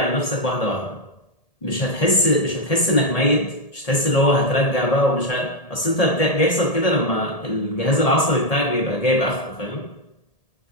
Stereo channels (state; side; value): late; right; 1.8 ms